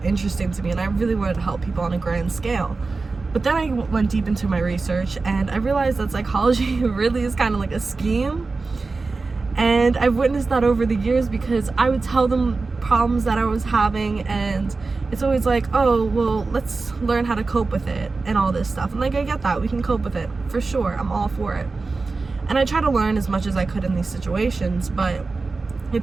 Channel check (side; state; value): left; quieter; 3.9 dB